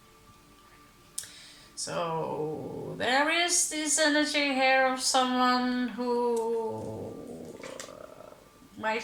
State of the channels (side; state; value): both; identical; correlation 1.00